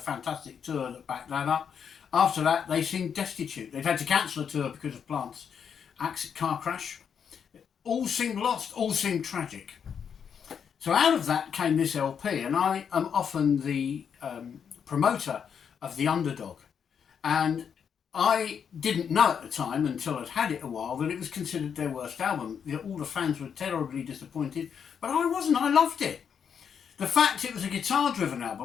tour that backed that up. After that, they seemed destitute. They'd had to cancel a tour because of Plant's car crash. All seemed lost, all seemed tragic. So out of that came this LP, and I am often the promoter of the underdog. And I didn't know at the time, until I'd had it a while, that it was considered their worst album. All the fans were terribly disappointed, but I wasn't. I loved it. The fact it was a guitar-driven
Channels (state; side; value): quieter; right; 7.4 dB